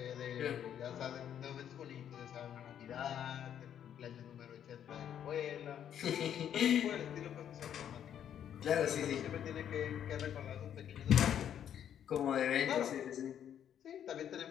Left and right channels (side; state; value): right; quieter; 9.6 dB